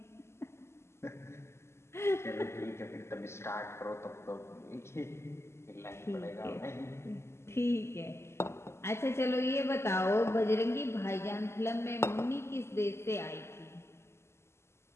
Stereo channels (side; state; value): right; late; 0.13 ms